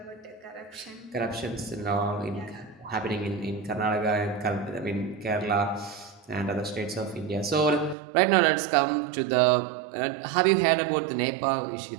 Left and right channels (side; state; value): left; drops out; at 8.0 s